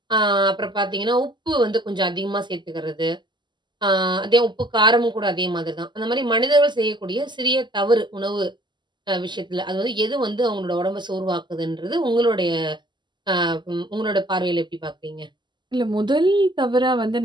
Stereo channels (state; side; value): late; left; 0.22 ms